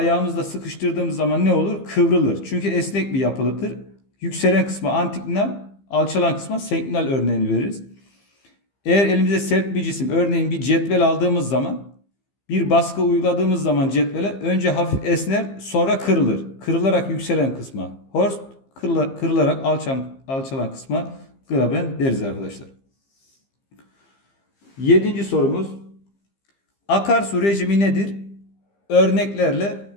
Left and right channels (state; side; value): late; right; 15 ms